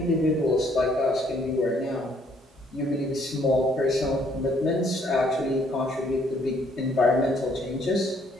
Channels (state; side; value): normal; both; correlation 0.65